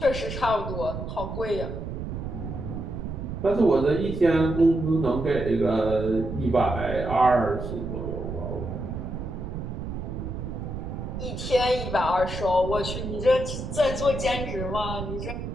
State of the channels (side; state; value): right; noise; rumble, 6 dB below the sound